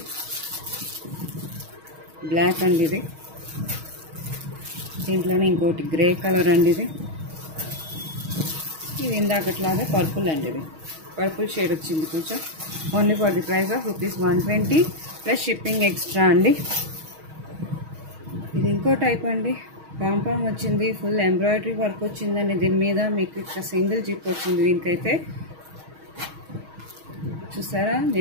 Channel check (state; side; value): late; left; 6.3 ms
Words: బ్లాక్ అండి. ఇది దీంట్లోనే ఇంకోటి గ్రే కలర్ అండి. ఇది ఇందాకట్లాగే పర్పుల్ అండి. ఇది పర్పుల్ షేడ్ వచ్చింది కొంచెం. Only for the price of rupees 120 plus shipping extra అండి. ఇది ఇంకో టైప్ అండి. పాంపామ్ వచ్చింది, ఫుల్ ఎంబ్రాయిడరీ వర్క్ వచ్చిందండి. దీని మీద మీకు ఇక్కడ సింగిల్ జిప్ వచ్చింది. దీనికైతే చూసారా,